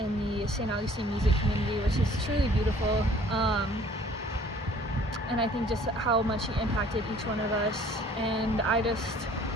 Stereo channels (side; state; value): both; normal; correlation 0.54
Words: the Saint Augustine music community, which is truly beautiful. And I think just how much he impacted each one of us. And I just